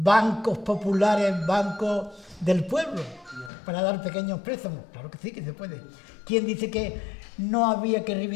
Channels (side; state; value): right; drops out; at 3.5 s